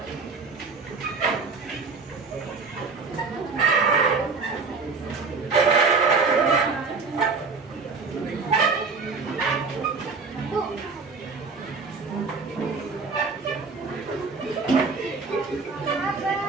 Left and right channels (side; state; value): left; quieter; 4.5 dB